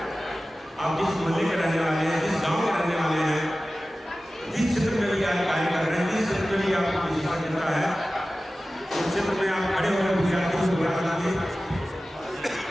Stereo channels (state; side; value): normal; both; correlation 0.96